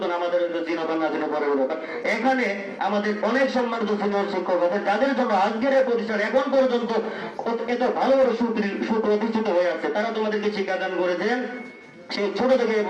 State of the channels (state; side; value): identical; both; correlation 1.00